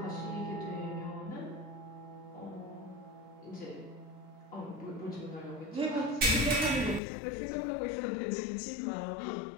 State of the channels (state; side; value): drops out; right; at 7.0 s